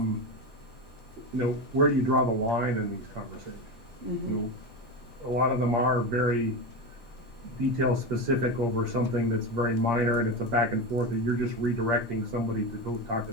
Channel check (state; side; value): normal; both; correlation 0.19